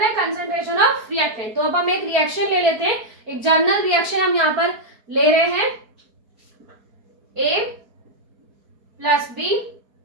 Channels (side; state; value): left; late; 4.7 ms